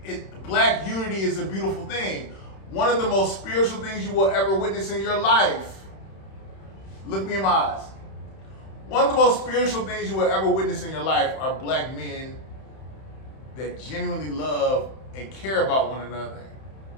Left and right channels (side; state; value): right; late; 31 ms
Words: black unity is a beautiful thing. One of the most spiritual things you will ever witness in your life. Look me in my eyes. One of the most spiritual things you will ever witness in your life are black men that genuinely love and care about one another.